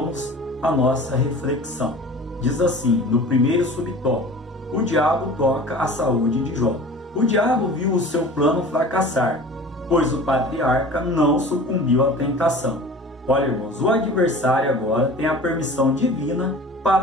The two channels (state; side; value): normal; both; correlation 0.41